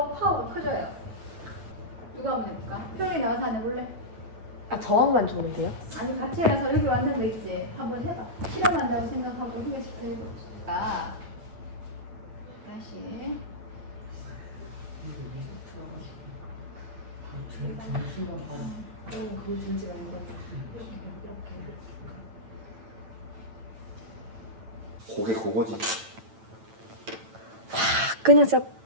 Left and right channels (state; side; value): late; left; 9.0 ms